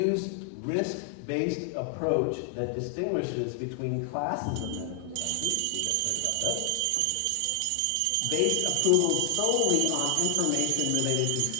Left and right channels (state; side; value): different; both; correlation 0.00